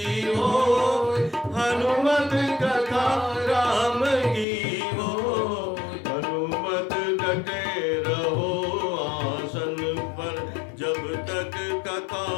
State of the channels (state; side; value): drops out; right; at 4.5 s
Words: हो। हनुमत कथा राम की हो। हनुमत डटे रहो आसन पर जब तक कथा